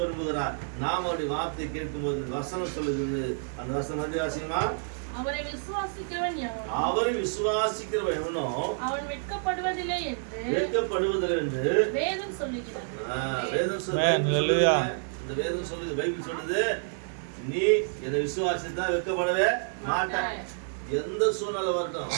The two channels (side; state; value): left; silent; 59 dB below the other